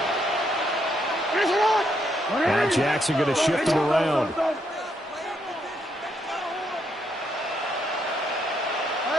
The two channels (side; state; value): both; normal; correlation 0.76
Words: Now Jackson going to shift him around.